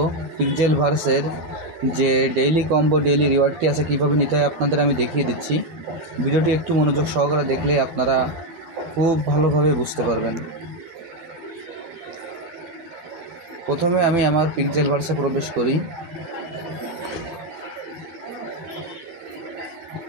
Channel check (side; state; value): left; late; 13 ms